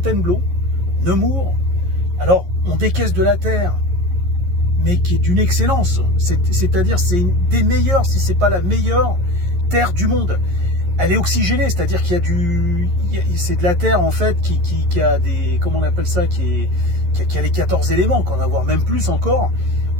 Nemours. Alors, on décaisse de la terre, mais qui est d'une excellence. C'est-à-dire, c'est une des meilleures, si c'est pas la meilleure terre du monde. Elle est oxygénée, c'est-à-dire qu'il y a c'est de la terre en fait qui a des, comment on appelle ça, qui a les 14 éléments, qu'on a voire même plus encore,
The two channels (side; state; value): left; late; 11 ms